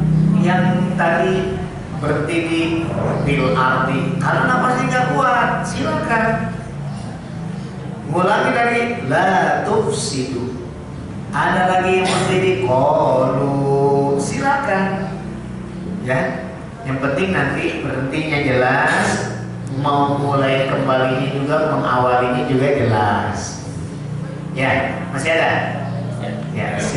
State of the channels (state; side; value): identical; both; correlation 1.00